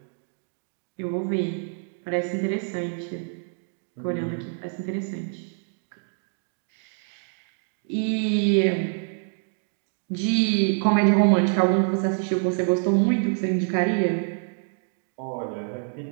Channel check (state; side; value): silent; left; 59 dB below the other